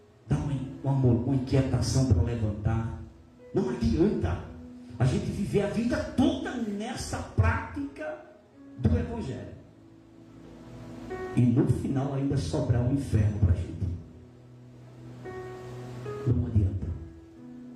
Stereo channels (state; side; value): identical; both; correlation 1.00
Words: dá uma inquietação para levantar. Não adianta a gente viver a vida toda nessa prática do Evangelho e no final ainda sobrar um inferno para a gente. Não adianta.